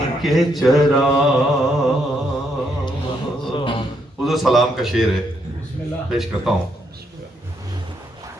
के चराग। उधर सलाम का शेर है, पेश करता हूं।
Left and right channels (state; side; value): normal; both; correlation 0.75